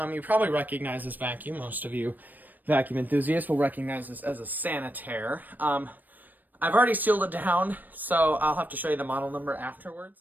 you probably recognize this vacuum. Most of you vacuum enthusiasts will recognize this as a sanitaire. I've already sealed it down, so I'll have to show you the model number afterwards.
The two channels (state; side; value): late; left; 0.087 ms